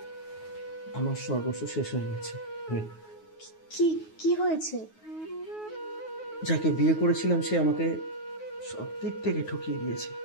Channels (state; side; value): late; right; 9.4 ms